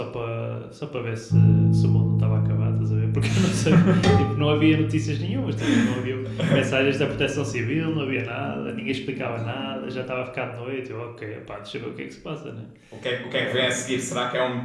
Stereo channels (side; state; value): both; identical; correlation 1.00